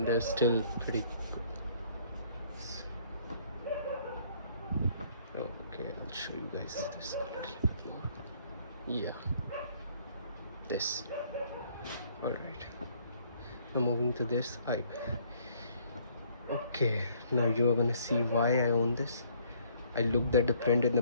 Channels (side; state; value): both; inverted; correlation -0.63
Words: they're still pretty good. Okay, I'll show you guys this a little bit more. Yeah, this. Alright, now moving to this. Okay, now you are gonna see why I own this. I looked at the print in